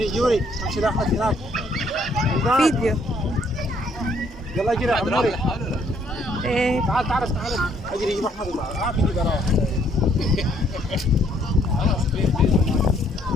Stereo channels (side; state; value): both; normal; correlation 0.66